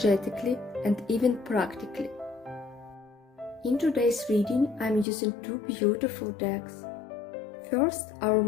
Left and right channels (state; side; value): drops out; right; at 5.1 s